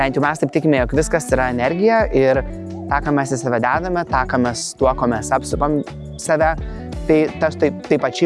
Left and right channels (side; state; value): both; identical; correlation 1.00